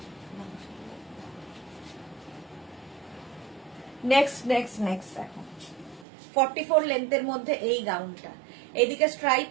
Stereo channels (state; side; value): drops out; left; at 6.1 s